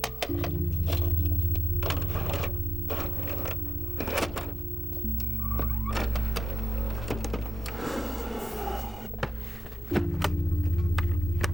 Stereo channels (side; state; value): both; normal; correlation 0.93